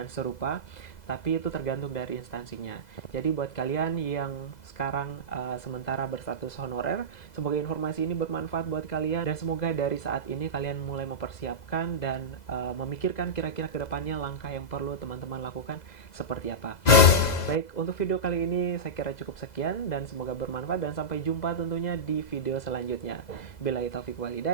serupa, tapi itu tergantung dari instansinya. Jadi buat kalian yang sekarang sementara berstatus honorer, semoga informasi ini bermanfaat buat kalian dan semoga dari saat ini kalian mulai mempersiapkan dan memikirkan kira-kira kedepannya langkah yang perlu teman-teman lakukan seperti apa. Baik, untuk video kali ini saya kira cukup sekian dan semoga bermanfaat dan sampai jumpa tentunya di video selanjutnya. Billahi taufiq wal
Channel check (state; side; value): late; right; 2.0 ms